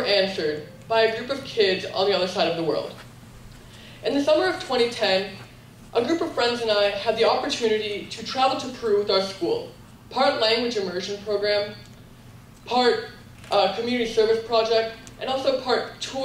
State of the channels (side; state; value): both; identical; correlation 1.00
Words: answered by a group of kids on the other side of the world. In the summer of 2010, a group of friends and I had the opportunity to travel to Peru with our school, part language immersion program, part community service project, and also part